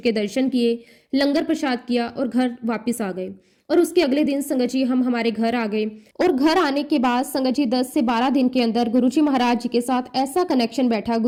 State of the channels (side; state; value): both; identical; correlation 1.00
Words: दर्शन किए, लंगर प्रसाद किया और घर वापस आ गए। और उसके अगले दिन संगत जी हम हमारे घर आ गए और घर आने के बाद संगत जी 10 से 12 दिन के अंदर गुरुजी महाराज जी के साथ ऐसा कनेक्शन बैठा,